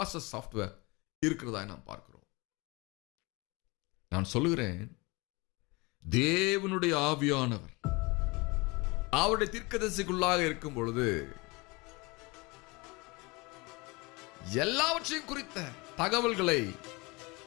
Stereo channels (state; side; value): quieter; right; 25.9 dB